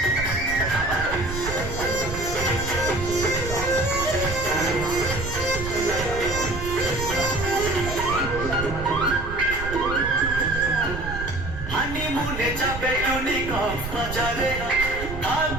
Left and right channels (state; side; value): noise; right; rumble, 8 dB below the sound